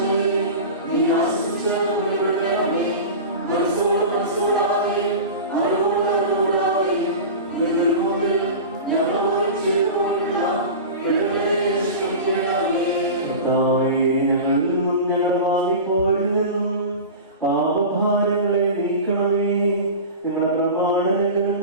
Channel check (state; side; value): inverted; both; correlation -0.30